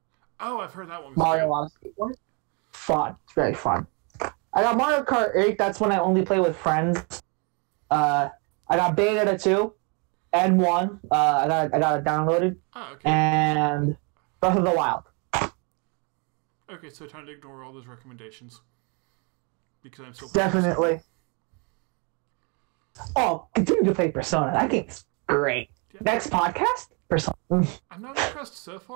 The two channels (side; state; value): left; quieter; 33.3 dB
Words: Oh, I've heard that one. Mario Odyssey. Fun. It's very fun. I got Mario Kart 8. That's when I only play with friends. I got Bayonetta 2 and 1. I got it downloaded. Oh, okay. And Breath of the Wild. Okay, so time to ignore all those recommendations. Because I'm so definitely. Oh, continue to play Persona. That game's great. Yeah. Next podcast? Persona. I'm not impressed so